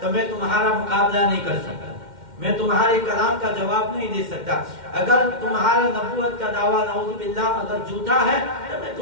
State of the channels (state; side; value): late; left; 2.1 ms